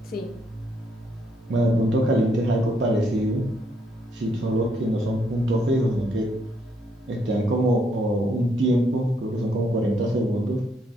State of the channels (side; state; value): both; normal; correlation 0.73